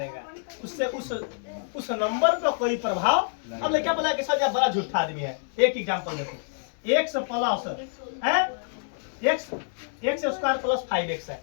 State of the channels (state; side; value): silent; right; digital silence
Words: उससे उस नंबर पर कोई प्रभाव। अब क्या बोला कि सर बड़ा झूठा आदमी है। एक एग्जांपल देखो, x प्लस है x स्क्वायर प्लस 5x है।